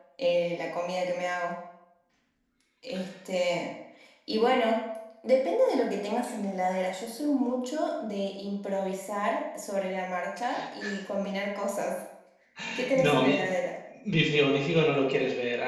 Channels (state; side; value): identical; both; correlation 1.00